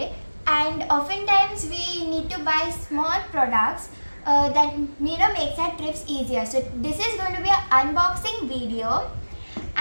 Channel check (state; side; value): inverted; both; correlation -1.00